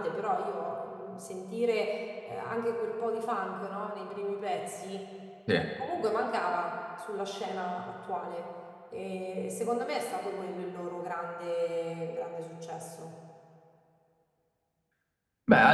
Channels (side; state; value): both; identical; correlation 1.00